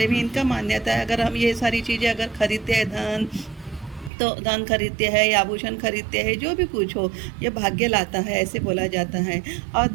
में इनका मान्यता है अगर हम ये सारी चीज़ें अगर खरीदते हैं, धन खरीदते हैं या आभूषण खरीदते हैं, जो भी कुछ हो, ये भाग्य लाता है, ऐसे बोला जाता है। और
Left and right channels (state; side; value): drops out; left; at 4.1 s